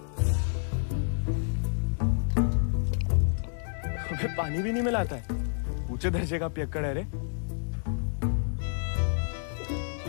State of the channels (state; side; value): silent; right; digital silence